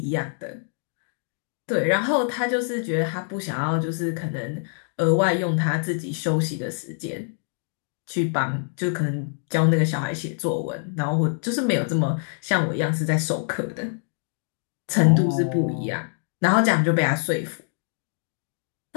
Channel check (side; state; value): right; silent; 62 dB below the other